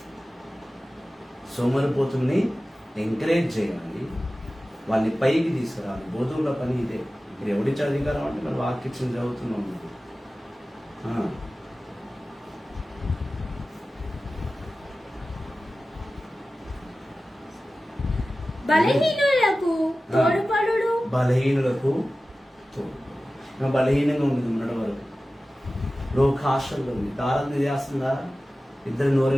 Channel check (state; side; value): normal; both; correlation 0.96